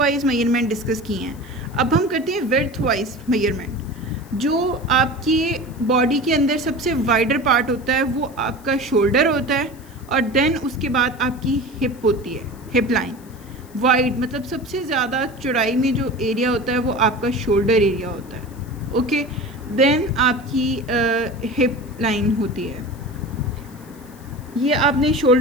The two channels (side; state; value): left; noise; hiss, 25 dB below the sound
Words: मेजरमेंट डिस्कस किए हैं। अब हम करते हैं विड्थ वाइज मेजरमेंट। जो आपकी बॉडी के अंदर सबसे वाइडर पार्ट होता है वो आपका शोल्डर होता है, और देन उसके बाद आपकी हिप होती है, हिप लाइन। वाइड मतलब सबसे ज़्यादा चौड़ाई में जो एरिया होता है वो आपका शोल्डर एरिया होता है। ओके, देन आपकी हिप लाइन होती है। ये आपने